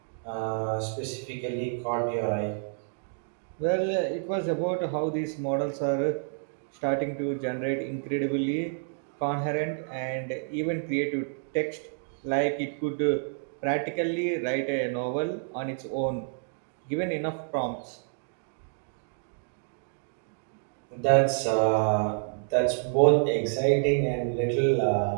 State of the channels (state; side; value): silent; left; digital silence